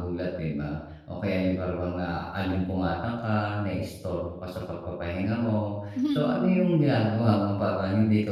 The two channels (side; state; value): both; identical; correlation 1.00